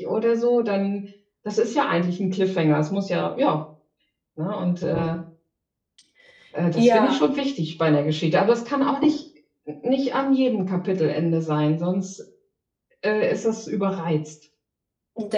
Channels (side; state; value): both; identical; correlation 1.00